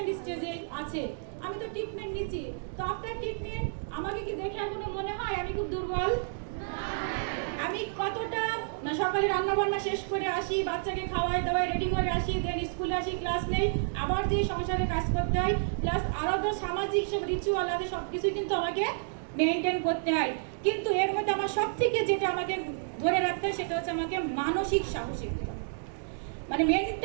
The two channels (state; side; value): silent; left; digital silence